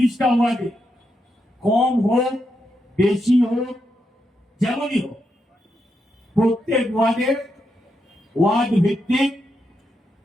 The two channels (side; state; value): both; normal; correlation 0.83